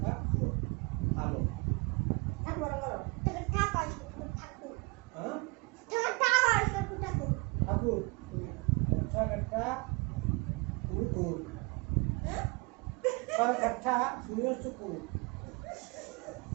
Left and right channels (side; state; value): left; quieter; 28.6 dB